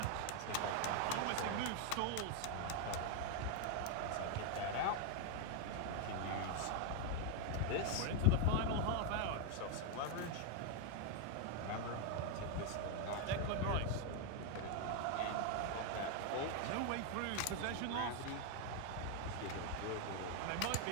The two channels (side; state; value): both; different; correlation 0.01